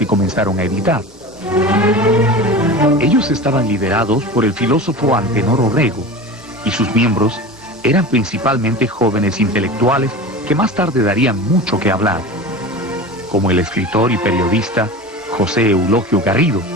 comenzaron a editar. Ellos estaban liderados por el filósofo Antenor Orrego, y sus miembros eran principalmente jóvenes intelectuales que más tarde darían mucho que hablar, como el escritor y periodista José Eulogio Garrido,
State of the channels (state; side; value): normal; both; correlation 0.32